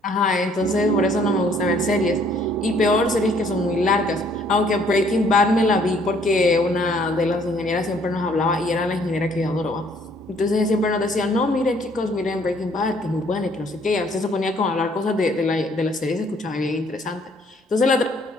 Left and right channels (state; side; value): normal; both; correlation 0.62